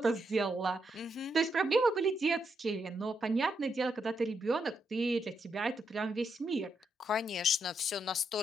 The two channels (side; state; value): both; normal; correlation 0.80